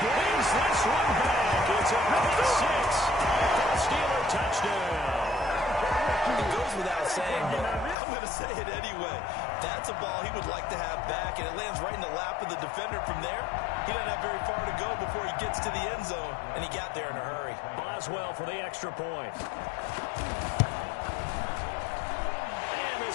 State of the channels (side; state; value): right; drops out; at 8.0 s